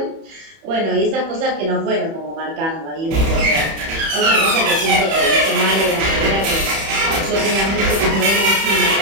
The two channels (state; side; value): late; left; 31 ms